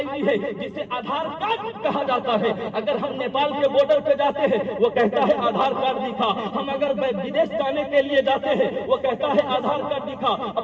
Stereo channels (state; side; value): identical; both; correlation 1.00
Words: ڈی ہے جسے آدھار کارڈ کہا جاتا ہے، اگر ہم نیپال کے بارڈر پہ جاتے ہیں وہ کہتا ہے آدھار کارڈ دکھا، ہم اگر بدیش جانے کے لیے جاتے ہیں وہ کہتا ہے آدھار کارڈ دکھا،